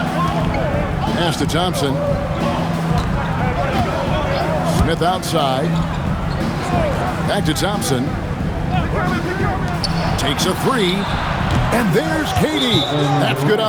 Pass to Thompson. Smith outside. Back to Thompson. Takes a 3. And there's KD. That's good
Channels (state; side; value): identical; both; correlation 1.00